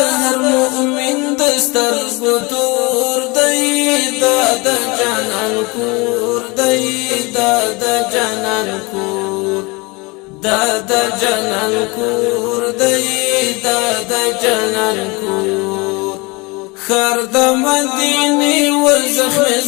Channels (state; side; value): quieter; right; 26.3 dB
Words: هر مؤمن د سترګو تور دی دا د جنان کور دی دا د جنان کور دا د جنان کور دی دا د جنان کور خر د مدینه و زخم